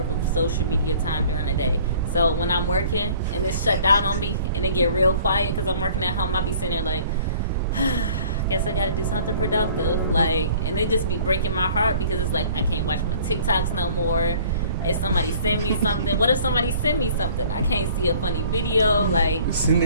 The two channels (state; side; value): inverted; both; correlation -0.52